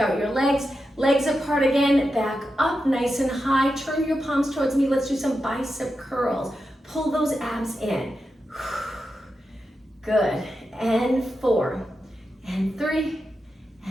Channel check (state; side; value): normal; both; correlation 0.89